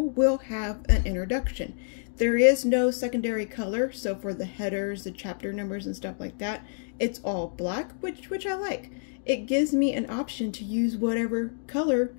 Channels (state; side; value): silent; right; digital silence